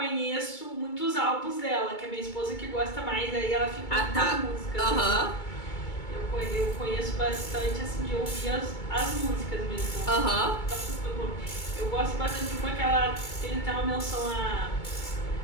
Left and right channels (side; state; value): right; late; 2.2 ms